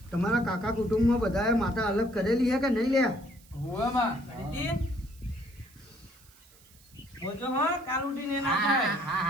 તમારા કાકા કુટુંબમાં બધાએ માતા અલગ કરેલી છે કે નહીં લે? હોવે માં કરીતી બોલજો હા કાલ ઉઠીને એના હા થાય. હા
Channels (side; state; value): right; noise; hiss, 26 dB below the sound